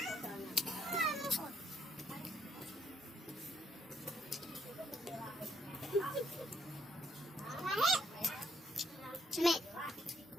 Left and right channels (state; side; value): normal; both; correlation 0.70